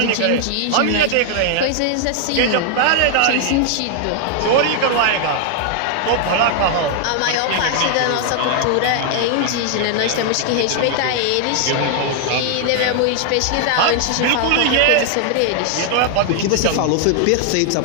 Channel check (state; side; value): different; both; correlation 0.00